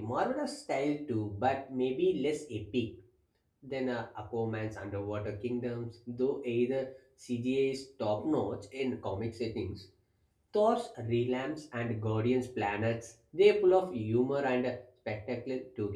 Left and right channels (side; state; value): both; identical; correlation 1.00